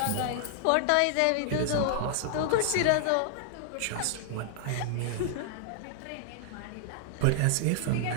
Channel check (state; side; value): different; both; correlation 0.00